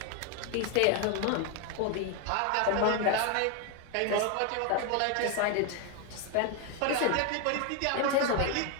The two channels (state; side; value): different; both; correlation 0.01